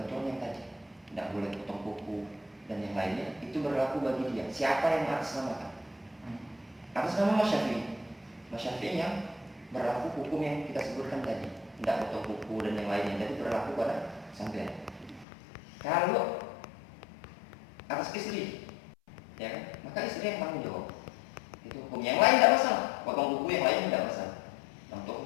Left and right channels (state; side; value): drops out; right; at 15.2 s